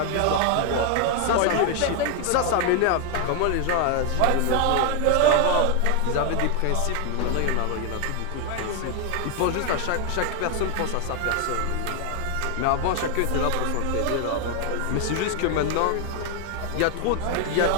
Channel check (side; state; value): both; different; correlation 0.01